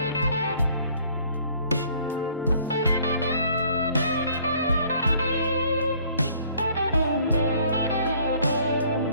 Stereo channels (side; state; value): both; inverted; correlation -0.59